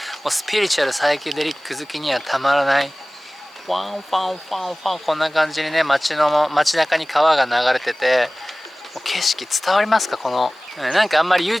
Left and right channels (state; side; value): normal; both; correlation 0.98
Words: もうスピリチュアルサイケデリック好きにはたまらない、ファンファンファンファン、こんな感じにね、街中に川が流れてて、もう景色伝わりますか？このなんかあんまり